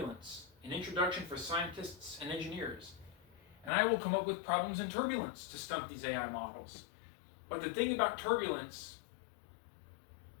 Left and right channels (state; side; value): drops out; right; at 3.7 s